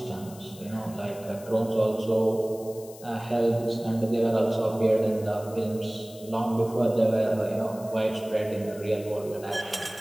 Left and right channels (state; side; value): noise; left; hiss, 20 dB below the sound